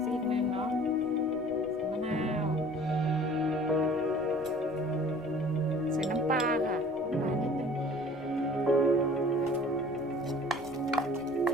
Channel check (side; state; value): left; noise; rumble, 24 dB below the sound